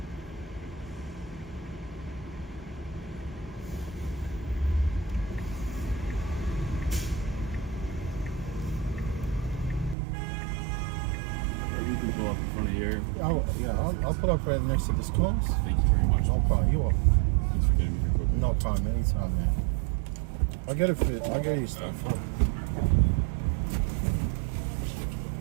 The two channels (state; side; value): drops out; left; at 10.0 s